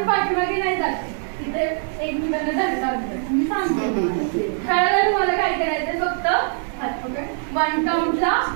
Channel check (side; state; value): left; silent; 58 dB below the other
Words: आपण पाठीमागे नाही जाते, तिथे एकमेकांना धक्का लागतो. मी सांगते खेळायला तुम्हाला काय करायचं, फक्त हात पकड. 1 काउंटला